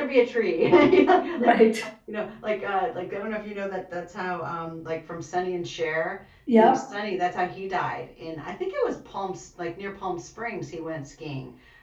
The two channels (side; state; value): both; identical; correlation 1.00